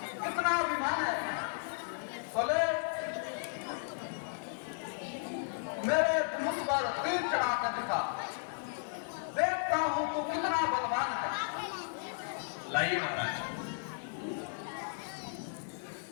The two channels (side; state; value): right; silent; digital silence